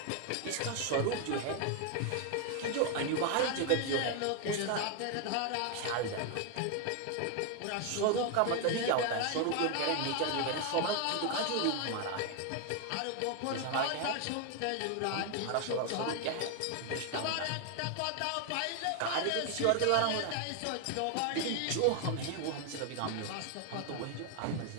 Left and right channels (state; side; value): different; both; correlation 0.01